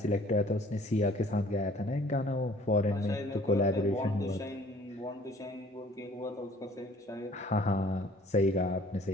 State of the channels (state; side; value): normal; both; correlation 0.55